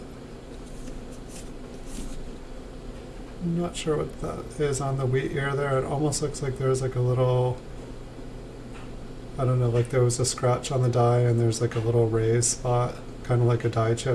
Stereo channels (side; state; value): both; identical; correlation 1.00